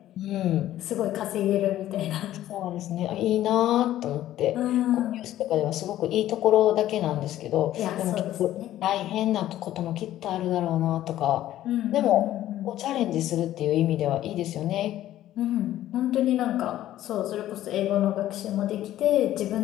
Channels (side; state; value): right; quieter; 13.3 dB